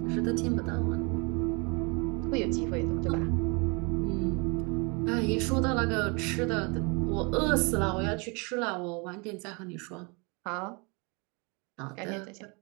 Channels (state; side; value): quieter; left; 30.9 dB